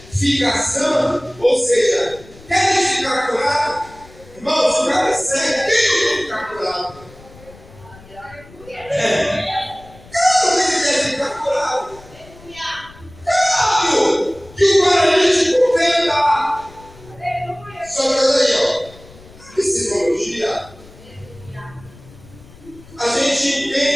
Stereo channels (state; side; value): noise; left; rumble, 22 dB below the sound